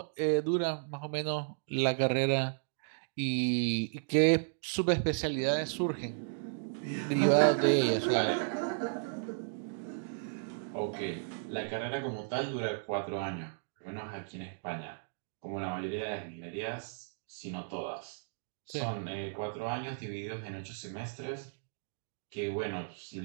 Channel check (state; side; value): silent; left; digital silence